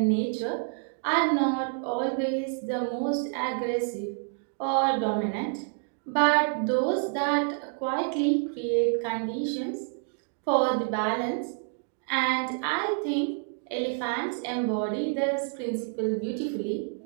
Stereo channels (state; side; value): silent; left; 57 dB below the other